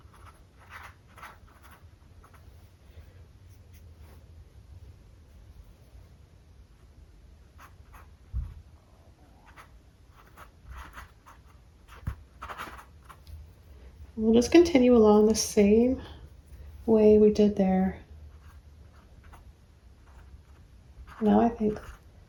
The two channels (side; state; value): both; identical; correlation 1.00